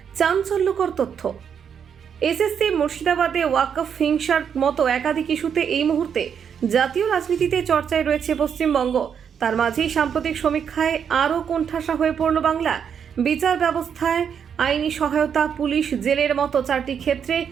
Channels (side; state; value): left; quieter; 7.6 dB